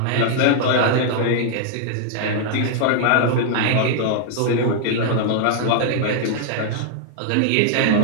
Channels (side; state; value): both; different; correlation -0.01